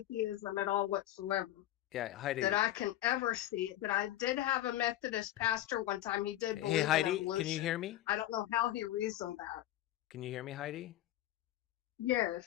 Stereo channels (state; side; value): quieter; right; 13.9 dB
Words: at all whatsoever Yeah, Heidi. that I can ever see. But I did have a Methodist pastor one time. He did believe Hey, Heidi, in evolution. can you hear me? I don't know how he reasoned that. Can you hear me, Heidi?